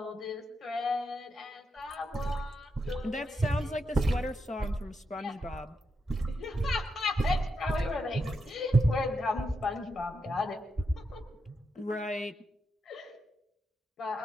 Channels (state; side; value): normal; both; correlation 0.84